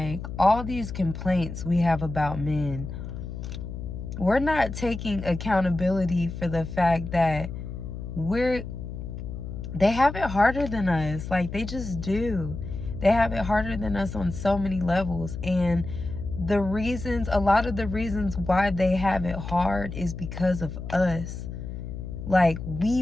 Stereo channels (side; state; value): left; noise; hum, 8 dB below the sound